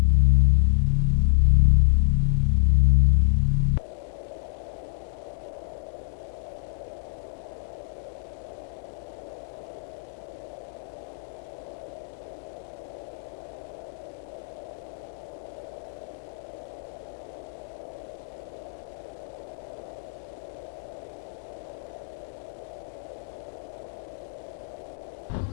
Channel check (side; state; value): right; silent; digital silence